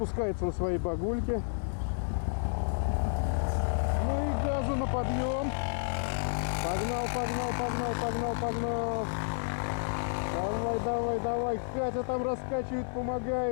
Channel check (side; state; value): right; silent; 57 dB below the other